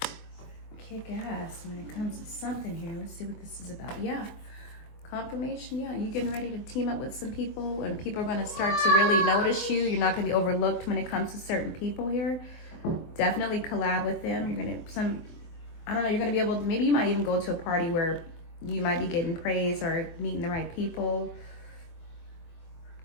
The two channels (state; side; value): late; right; 24 ms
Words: kick ass when it comes to something here. Let's see what this is about. Yeah. Confirmation, yeah. You getting ready to team up with some people, and people are going to start to really notice you. You're not going to be overlooked when it comes to certain people here. Definitely collab with them. You're going to, I don't know, you're going to be able to, maybe you might even go to a party where you might be getting praise or meeting the right people